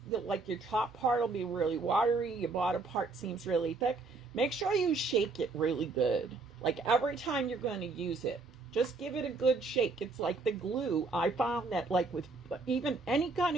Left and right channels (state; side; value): quieter; left; 3.8 dB